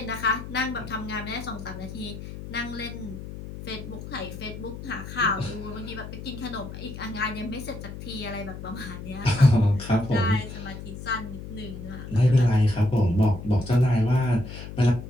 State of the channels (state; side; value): noise; left; hum, 10 dB below the sound